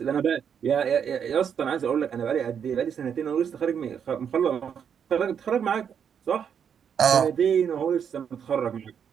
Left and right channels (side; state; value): left; quieter; 7.7 dB